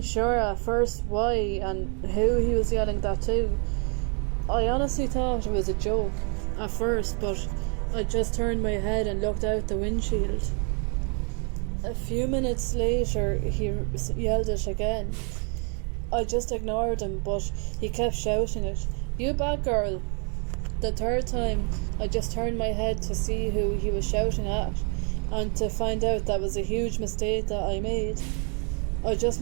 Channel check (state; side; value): quieter; left; 37.3 dB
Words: sure at first why and who he was yelling that to. I honestly thought it was a joke at first, but I just turned my head and looked out the windshield. A few minutes later, he yelled it again. I just ignored him, but he kept shouting it, "You bad girl." The third time, I just turned my head to see who he was shouting at, and to find out that was a huge mistake that I made. I just